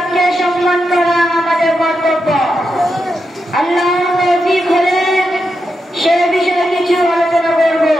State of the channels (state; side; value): normal; both; correlation 0.86